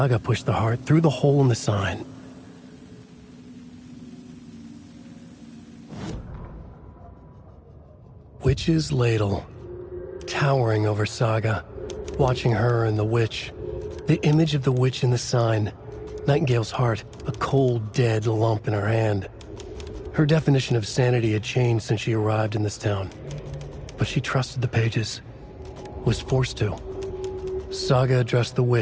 pushed the heart through the hole in the sign. Witch's ladle. Towering over Saga. Watching her and the witch. The image of the witch in the sign. Nightingale's heart, a cold, dead lump in her hand. Her definition of sanity had changed since she arrived in this town. But she trusted the pages. Was forced to. Saga addressed the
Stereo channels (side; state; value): both; identical; correlation 1.00